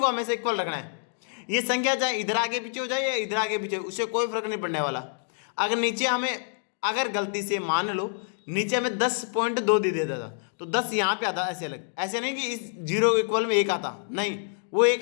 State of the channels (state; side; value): silent; right; digital silence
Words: हमेशा इक्वल रखना है। ये संख्या चाहे इधर आगे पीछे हो जाए या इधर आगे पीछे, उससे कोई फर्क नहीं पड़ने वाला। अगर नीचे हमें अगर गलती से मान लो नीचे हमें 10.2 दे देता था, तो 10 यहाँ पे आता ऐसे अलग, ऐसे नहीं कि इस 0 के इक्वल में 1 आता, नहीं, वो एक